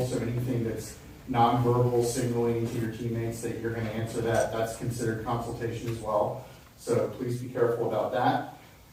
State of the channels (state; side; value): identical; both; correlation 1.00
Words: so anything that's nonverbal signaling to your teammates that you're going to answer that's considered consultation as well. So please be careful about that.